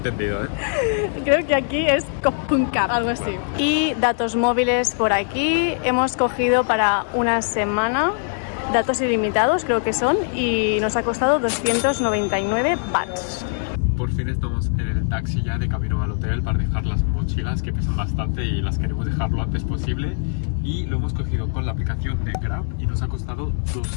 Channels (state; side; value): silent; right; 64 dB below the other